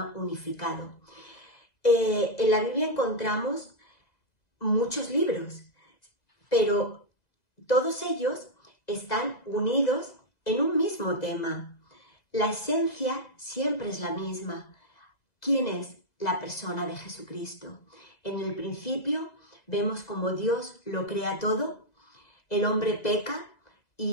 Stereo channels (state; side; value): late; right; 1.9 ms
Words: unificado. En la Biblia encontramos muchos libros, pero todos ellos están unidos en un mismo tema. La esencia siempre es la misma. ¿Quién es la persona de Jesucristo? En el principio vemos cómo Dios lo crea todo, el hombre peca